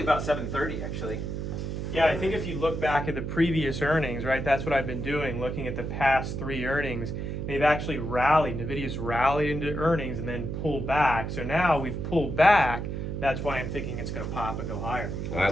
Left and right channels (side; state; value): right; noise; hum, 4 dB below the sound